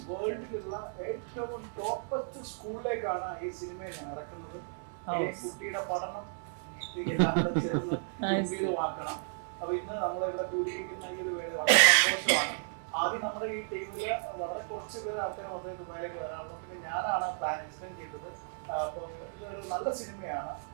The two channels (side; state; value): left; silent; digital silence